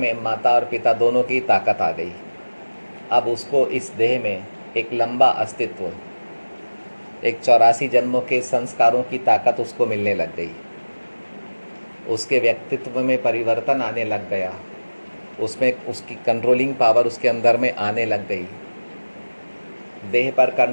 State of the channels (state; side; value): inverted; both; correlation -1.00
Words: माता और पिता दोनों की ताकत आ गई। अब उसको इस देह में एक लंबा अस्तित्व, एक 84 जन्मों के संस्कारों की ताकत उसको मिलने लग गई। उसके व्यक्तित्व में परिवर्तन आने लग गया, उसमें उसकी कंट्रोलिंग पावर उसके अंदर में आने लग गई। देह पर